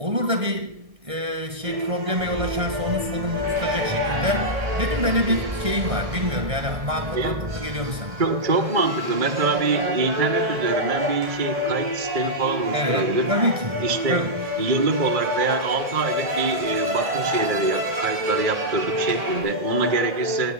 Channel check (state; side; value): late; left; 1.7 ms